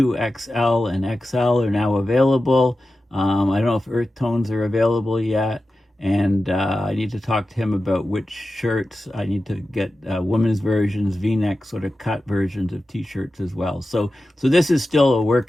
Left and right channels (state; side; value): normal; both; correlation 0.93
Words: and XL are now available. I don't know if Earth Tones are available yet. And I need to talk to him about which shirts. I need to get women's versions, V-neck sort of cut versions of t-shirts as well. So this is still a